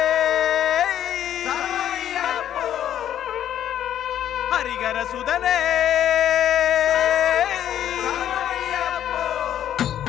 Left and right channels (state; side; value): quieter; right; 10.7 dB